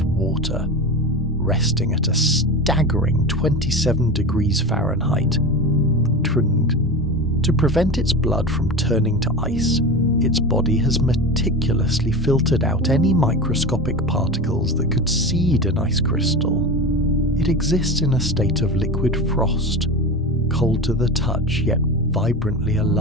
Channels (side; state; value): both; normal; correlation 0.26